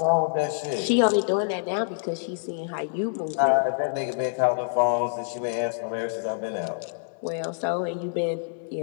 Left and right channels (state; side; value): silent; right; 61 dB below the other